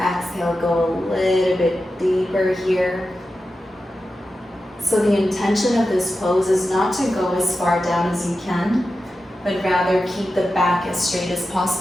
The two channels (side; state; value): both; normal; correlation 0.92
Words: go a little bit deeper here. So the intention of this pose is not to go as far down as you can, but rather keep the back as straight as